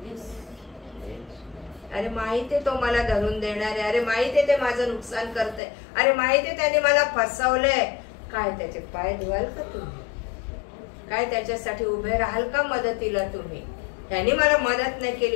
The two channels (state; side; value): drops out; right; at 5.6 s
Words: अरे माहिती आहे तो मला धरून देणार आहे, अरे माहिती आहे ते माझं नुकसान करतंय, अरे माहिती आहे त्याने मला फसवलंय. काय त्याचे पाय धुवाल का तुम्ही? काय त्याच्यासाठी उभे राहाल का मदतीला तुम्ही? त्यांनी मला मदत नाही